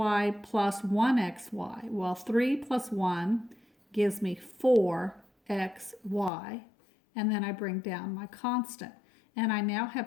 plus 1xy. Well, 3 plus 1 gives me 4xy. And then I bring down my constant. And I now have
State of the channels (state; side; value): drops out; right; at 6.3 s